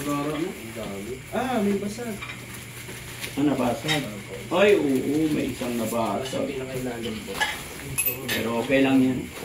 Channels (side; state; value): both; identical; correlation 1.00